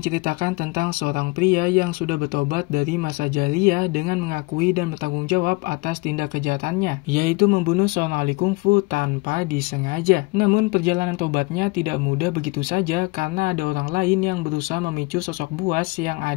tentang seorang pria yang sudah bertobat dari masa jahiliyah dengan mengakui dan bertanggung jawab atas tindak kejahatannya, yaitu membunuh seorang ahli kungfu tanpa disengaja. Namun perjalanan tobatnya tidak mudah begitu saja karena ada orang lain yang berusaha memicu sosok buas yang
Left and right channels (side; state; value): right; quieter; 24.8 dB